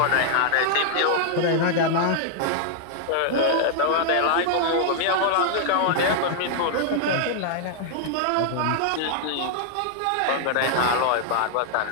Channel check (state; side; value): different; both; correlation 0.00